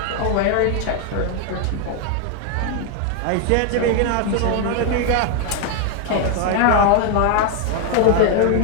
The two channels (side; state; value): both; different; correlation 0.00